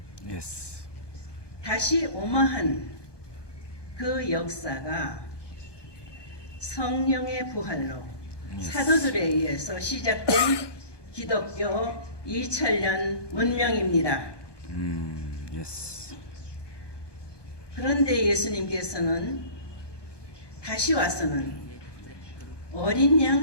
Yes. 다시 오마한 그 역사가 성령의 부활로 사도들에 의해서 시작된 기독교 2000년 문명입니다. Yes. 그런데 예수님께서는 다시 와서는 어린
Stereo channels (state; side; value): late; right; 1.2 ms